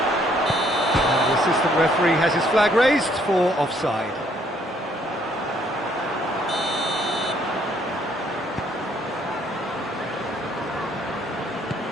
the assistant referee has his flag raised for offside.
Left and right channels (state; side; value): normal; both; correlation 0.66